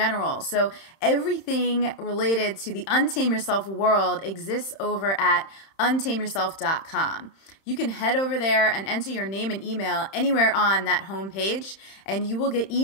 So everything related to the Untame Yourself world exists over at untameyourself.com. You can head over there and enter your name and email anywhere on that homepage, and you will get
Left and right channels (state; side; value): late; right; 31 ms